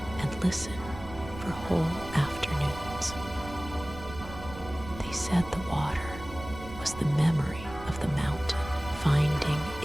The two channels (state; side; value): noise; right; rumble, 13 dB below the sound